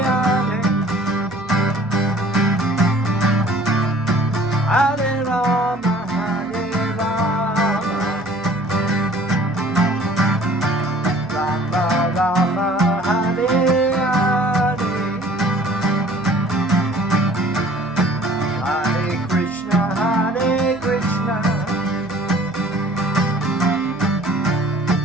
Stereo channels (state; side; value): noise; right; hum, 21 dB below the sound